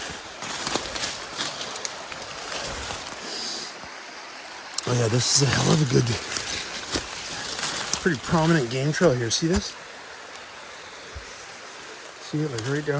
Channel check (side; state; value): both; identical; correlation 1.00